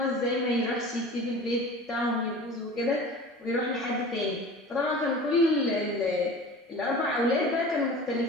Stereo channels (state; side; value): normal; both; correlation 0.39